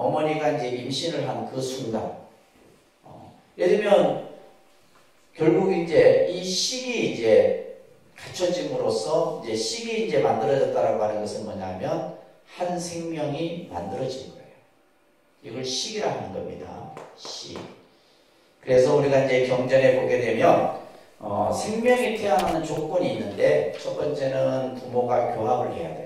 이제 임신을 한 그 순간 예를 들면 결국 이제 이 식이 이제 갖춰짐으로써 이제 식이 이제 만들어졌다라고 하는 것은 뭐냐면 한 생명이 만들어진 거예요. 이걸 식이라 하는 겁니다. 식. 그래서 우리가 이제 경전에 보게 되면 생명이 태어나는 조건이 있는데 첫 번째는 부모가 교합을 해야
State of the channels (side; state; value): both; identical; correlation 1.00